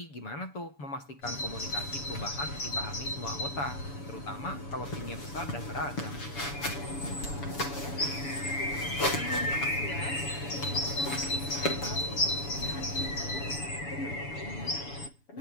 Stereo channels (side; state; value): right; late; 7.0 ms